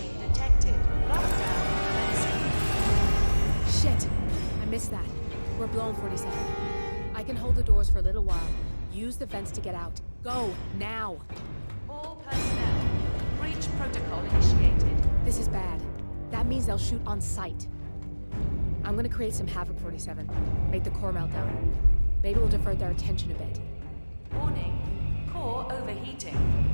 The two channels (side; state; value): both; inverted; correlation -1.00